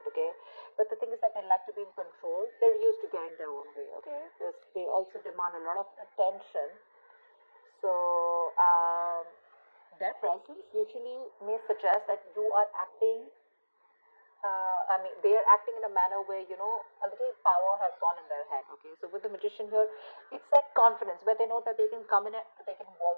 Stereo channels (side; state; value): both; inverted; correlation -1.00